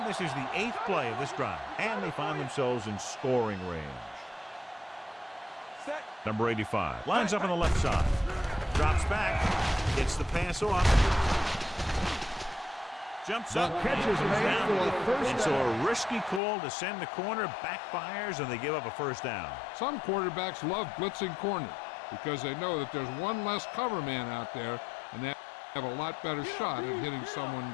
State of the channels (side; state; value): right; drops out; at 16.4 s